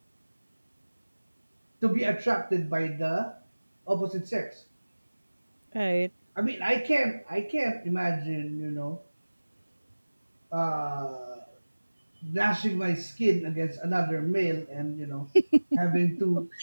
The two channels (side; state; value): both; inverted; correlation -1.00